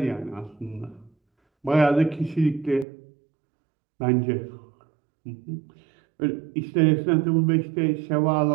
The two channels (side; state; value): left; drops out; at 2.9 s